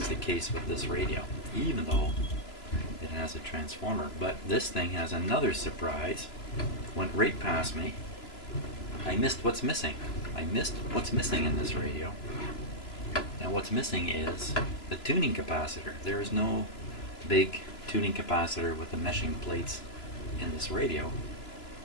the case with this radio, even though it has a transformer. But this thing has another surprise. Went right past me. I missed what's missing. I missed what's missing in this radio. And what's missing is the tuning capacitor. There is no big tuning capacitor with the meshing plates in this radio.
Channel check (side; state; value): right; late; 3.0 ms